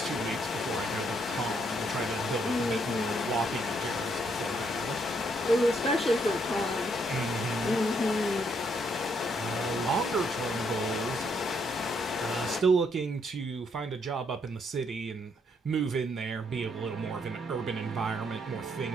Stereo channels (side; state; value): both; normal; correlation 0.73